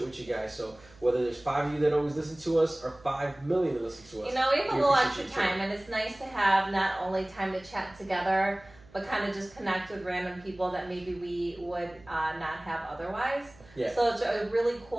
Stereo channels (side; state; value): right; noise; hum, 25 dB below the sound